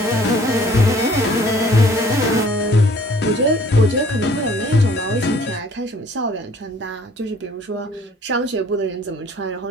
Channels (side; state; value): both; normal; correlation 0.55